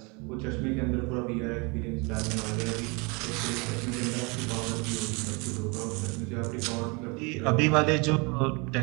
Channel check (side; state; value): left; quieter; 29.9 dB